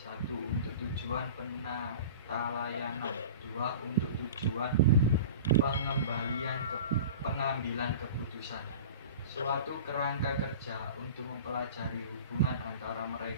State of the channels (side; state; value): both; inverted; correlation -0.37